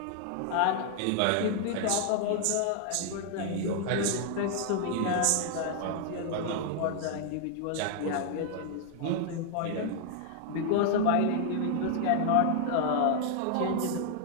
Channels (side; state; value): both; different; correlation 0.00